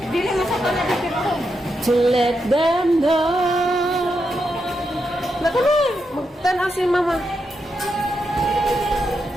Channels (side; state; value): both; normal; correlation 0.84